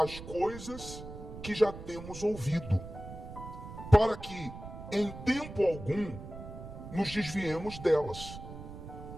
coisas que já temos ouvido, para que em tempo algum nos desviemos delas.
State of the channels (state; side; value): noise; right; rumble, 12 dB below the sound